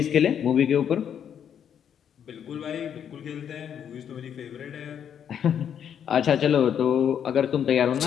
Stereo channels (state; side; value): quieter; right; 8.7 dB